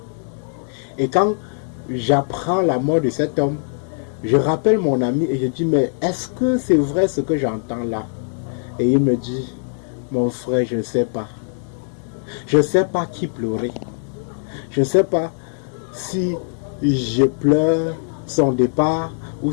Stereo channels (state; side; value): silent; right; digital silence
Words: Et quand j'apprends la mort de cet homme, Je rappelle mon ami et je dis, mais est-ce que c'est vrai ce que j'entends là? Et il me dit, mon frère, je ne sais pas. Je ne sais pas qui pleurer. Je ne sais pas si je pleure son départ ou